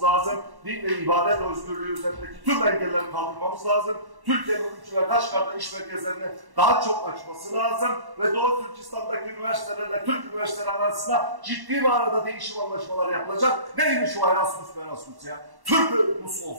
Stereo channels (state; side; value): late; left; 1.1 ms